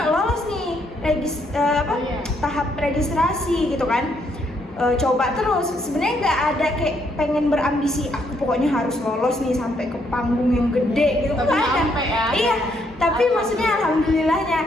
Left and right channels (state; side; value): normal; both; correlation 0.73